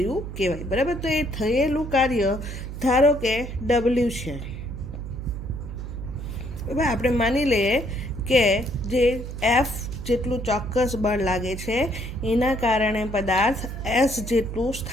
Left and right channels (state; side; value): noise; right; hum, 8 dB below the sound